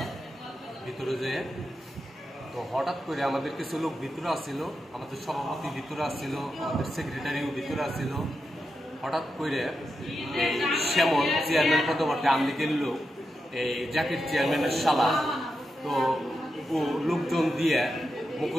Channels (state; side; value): normal; both; correlation 0.88